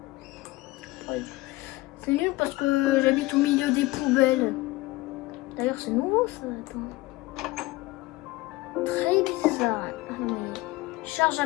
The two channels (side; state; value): right; quieter; 20.1 dB